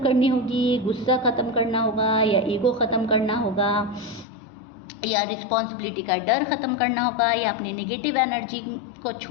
करनी होगी, गुस्सा ख़त्म करना होगा, या ईगो ख़त्म करना होगा, या रिस्पॉन्सिबिलिटी का डर ख़त्म करना होगा, या अपने नेगेटिव एनर्जी को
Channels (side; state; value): right; drops out; at 4.2 s